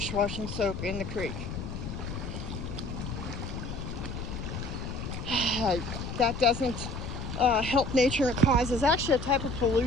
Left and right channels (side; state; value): left; noise; rumble, 6 dB below the sound